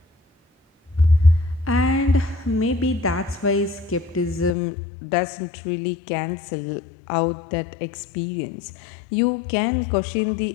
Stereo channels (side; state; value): right; drops out; at 4.5 s